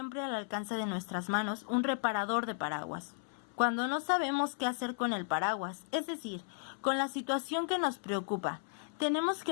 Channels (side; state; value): right; silent; 55 dB below the other